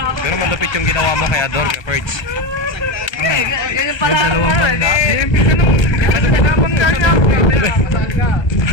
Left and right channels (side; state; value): right; late; 1.3 ms